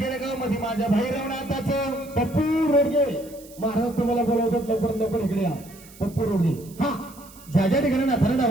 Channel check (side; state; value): right; noise; hiss, 21 dB below the sound